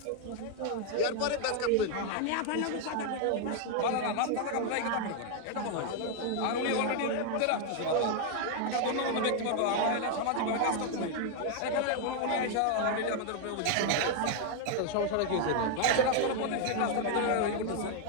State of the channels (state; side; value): different; both; correlation 0.00